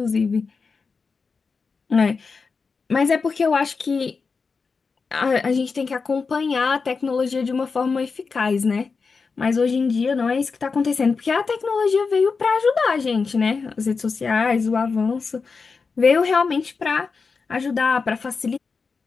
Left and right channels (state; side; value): quieter; right; 4.8 dB